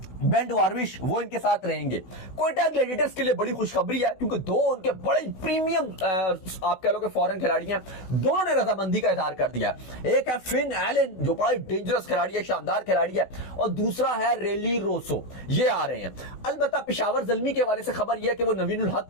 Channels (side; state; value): right; late; 16 ms